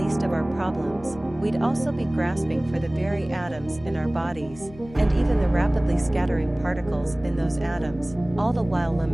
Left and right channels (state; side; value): noise; left; hum, 18 dB below the sound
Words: of our problems. We'd also be grasping for the very atoms in our bodies, and even the rapidly scattering particles in those atoms, all the while